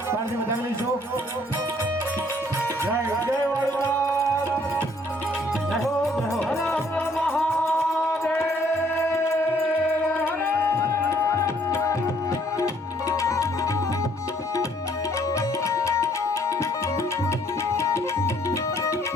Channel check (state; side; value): normal; both; correlation 0.63